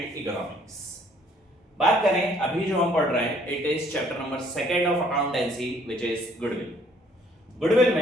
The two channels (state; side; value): normal; both; correlation 0.62